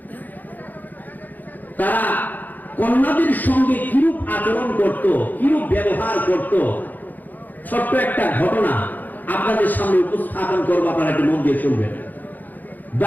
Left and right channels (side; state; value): right; late; 0.084 ms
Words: তারা কন্যাদের সঙ্গে কিরূপ আচরণ করত, কিরূপ ব্যবহার করত, ছোট্ট একটা ঘটনা আপনাদের সামনে উপস্থাপন করবো, আপনারা একটু মন দিয়ে শুনবেন।